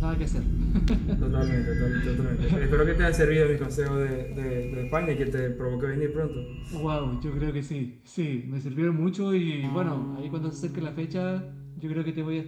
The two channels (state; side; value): identical; both; correlation 1.00